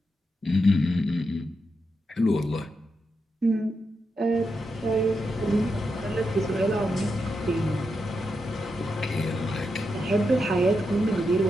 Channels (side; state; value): both; normal; correlation 0.85